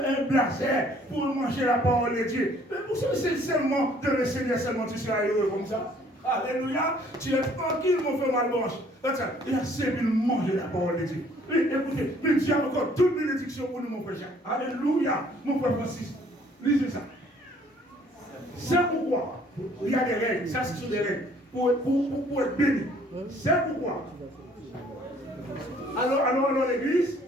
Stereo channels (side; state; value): both; normal; correlation 0.59